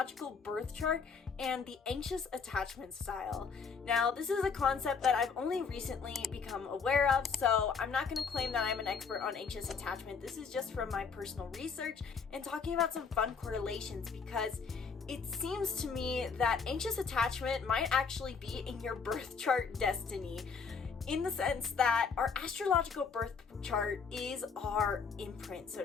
birth chart and the anxious attachment style. Now, this is a concept that I've only recently become aware of, so I'm not going to claim that I'm an expert on anxious attachment. This is just from my personal research and talking about some fun correlations, because it seems to me that anxious attachment might actually be in your birth chart destiny, in the sense that our astrological birth chart is our imprint, so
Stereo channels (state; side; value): quieter; right; 5.5 dB